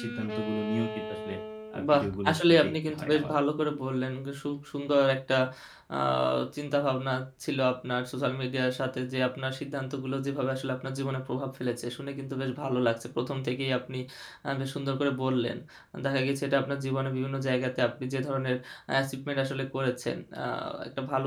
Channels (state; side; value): identical; both; correlation 1.00